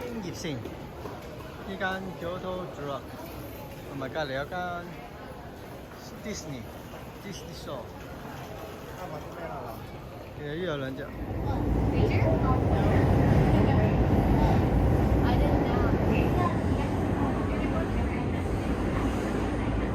京葉線呢間 Kyoto Drug 同埋隔離有間 Disney Store， 啱買啲咩啦嗱？其實呢有兩隻。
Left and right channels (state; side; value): identical; both; correlation 1.00